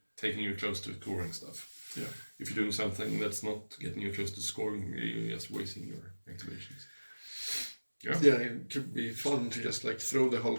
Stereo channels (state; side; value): inverted; both; correlation -1.00